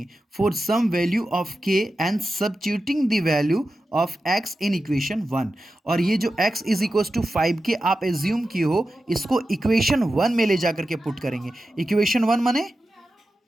for some value of k and substituting the value of x in equation 1। और ये जो x इज इक्वल टू 5 के आप एज्यूम किए हो, इसको इक्वेशन 1 में ले जाकर के पुट करेंगे। इक्वेशन 1 माने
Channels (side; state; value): both; normal; correlation 0.92